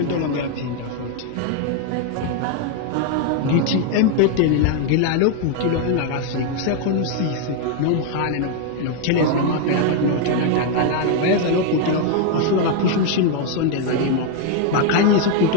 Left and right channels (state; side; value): different; both; correlation 0.01